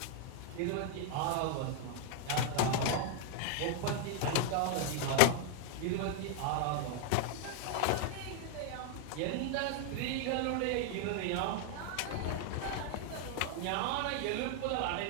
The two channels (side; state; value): both; different; correlation 0.00